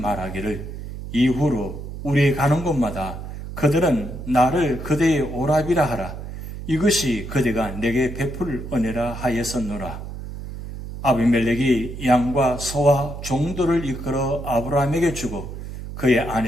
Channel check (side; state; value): right; noise; hum, 9 dB below the sound